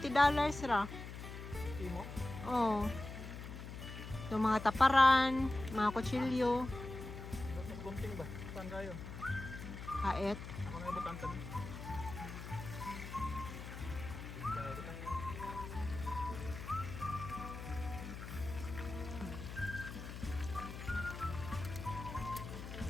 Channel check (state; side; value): noise; left; hum, 9 dB below the sound